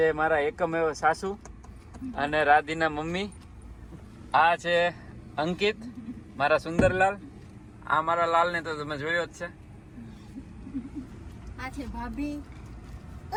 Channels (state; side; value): identical; both; correlation 1.00